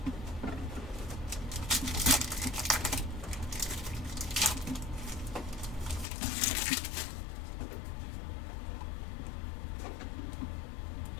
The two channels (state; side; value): drops out; right; at 6.1 s